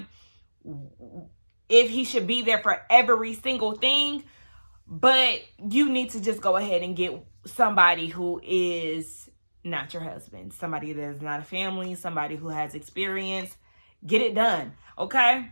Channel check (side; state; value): both; inverted; correlation -1.00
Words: if he should be there for every single thing. But you need to just go ahead and get somebody who is not your husband, somebody that is not a family, somebody who has experience. Get it done, okay?